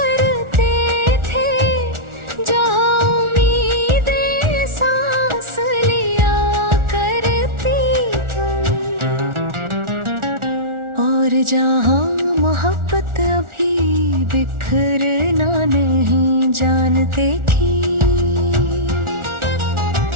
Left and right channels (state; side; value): late; left; 1.4 ms